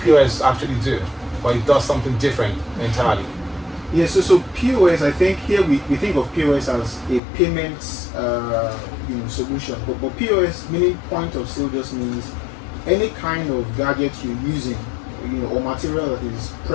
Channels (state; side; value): drops out; right; at 7.2 s